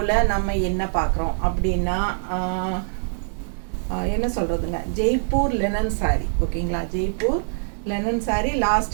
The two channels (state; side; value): silent; left; digital silence